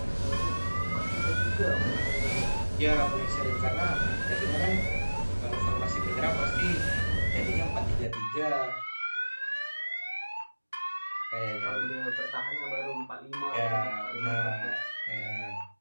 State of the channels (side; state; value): both; inverted; correlation -1.00